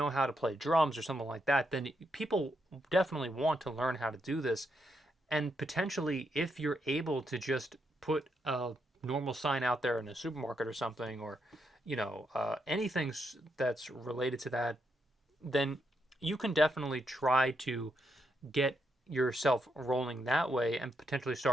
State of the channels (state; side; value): normal; both; correlation 0.80